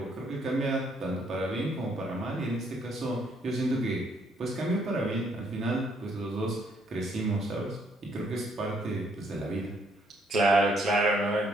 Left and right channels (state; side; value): normal; both; correlation 0.69